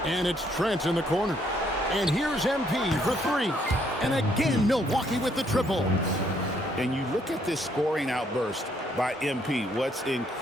And it's Trent in the corner. And here's MP for three. And again, Milwaukee with the triple. And you look at this scoring outburst by MP. What's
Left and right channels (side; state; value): both; normal; correlation 0.69